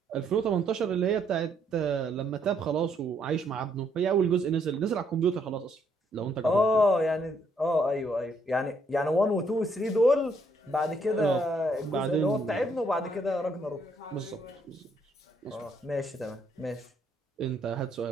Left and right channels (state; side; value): normal; both; correlation 0.70